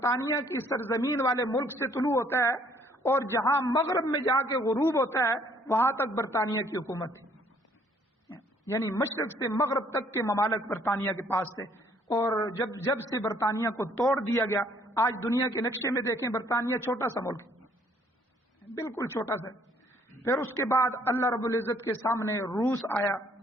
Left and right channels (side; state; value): both; normal; correlation 0.63